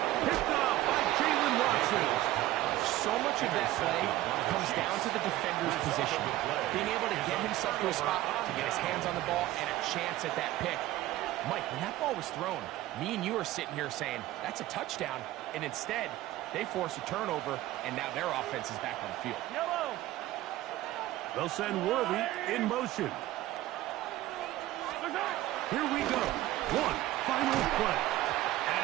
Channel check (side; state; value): left; quieter; 15.6 dB